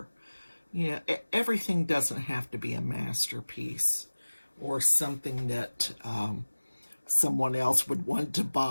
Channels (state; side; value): inverted; both; correlation -1.00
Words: You know, everything doesn't have to be a masterpiece or something that someone else would want to